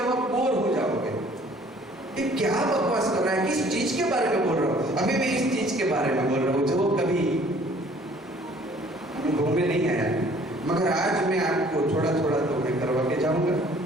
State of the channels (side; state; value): both; normal; correlation 0.55